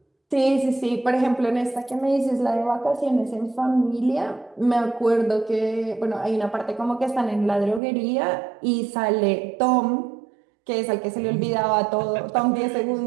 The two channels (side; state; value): left; drops out; at 7.8 s